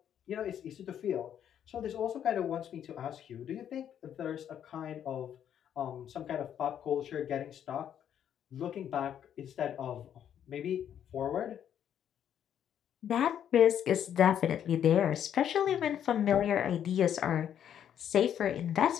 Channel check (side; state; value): right; quieter; 9.6 dB